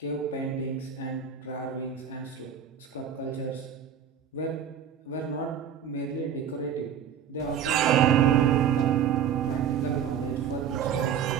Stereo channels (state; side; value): quieter; left; 8.3 dB